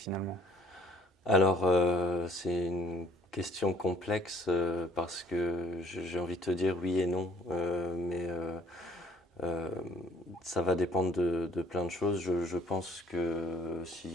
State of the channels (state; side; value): normal; both; correlation 0.59